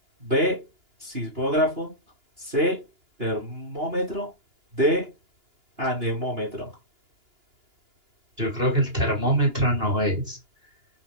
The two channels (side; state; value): left; late; 2.9 ms